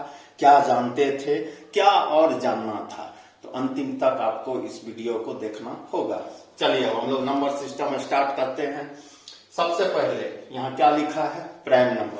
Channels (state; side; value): identical; both; correlation 1.00